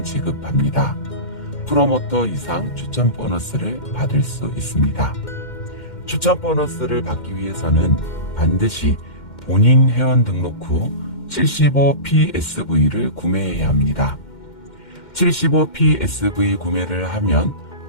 지급합니다. 프로모터 이상 추천 보너스를 받을 수 있습니다. 추천 보너스를 받기 위해서는 반드시 본인 회원 등록 후 75PSV를 구매해야 합니다. 75PSV 구매를 하면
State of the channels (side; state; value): right; late; 2.1 ms